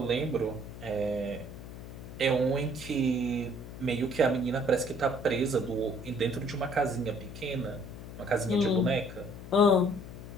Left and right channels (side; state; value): left; noise; hum, 12 dB below the sound